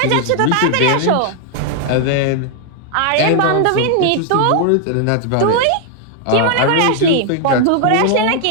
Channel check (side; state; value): both; different; correlation 0.00